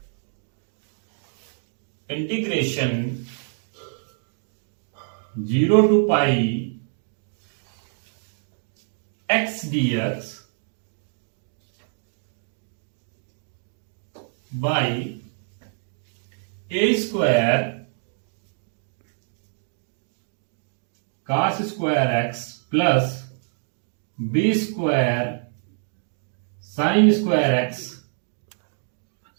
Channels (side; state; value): left; silent; 61 dB below the other